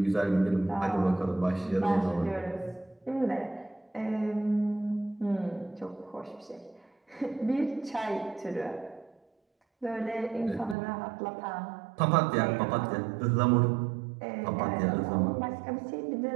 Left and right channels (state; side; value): drops out; left; at 10.8 s